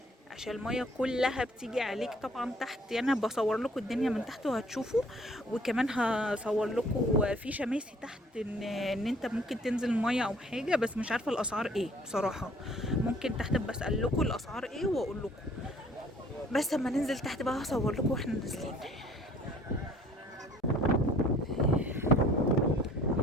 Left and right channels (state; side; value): normal; both; correlation 0.56